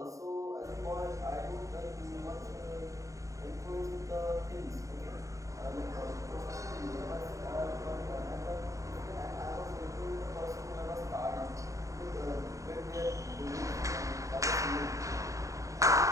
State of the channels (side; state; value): left; late; 0.16 ms